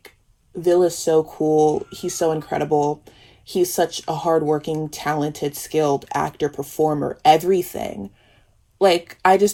Vil is so cool, he's so incredible, he's such a hardworking, talented, skilled actor, performer, everything. Like, I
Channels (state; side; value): identical; both; correlation 1.00